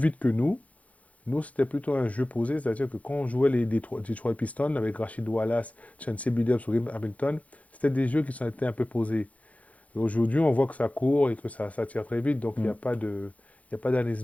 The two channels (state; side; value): late; right; 0.067 ms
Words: que nous. Nous, c'était plutôt un jeu posé, c'est-à-dire que quand on jouait les Detroit Pistons avec Rashid Wallace, Chauncey Billups ou Rip Hamilton, c'était des jeux qui sont été un peu posés. Et aujourd'hui, on voit que ça court et que ça tire très vite, donc il n'y Mm. a pas de, il y a pas d'analyse